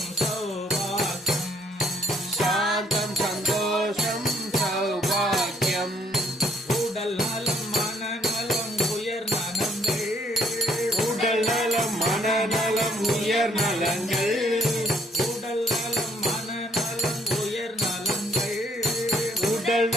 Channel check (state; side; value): normal; both; correlation 0.66